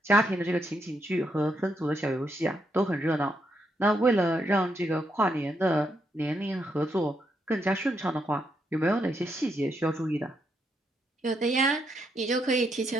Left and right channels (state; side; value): normal; both; correlation 0.79